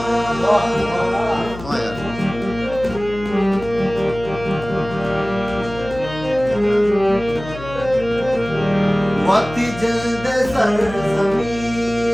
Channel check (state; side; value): noise; left; hum, 13 dB below the sound